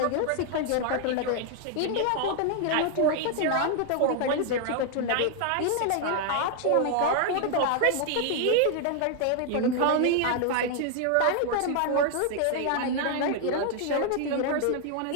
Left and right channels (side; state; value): both; different; correlation 0.00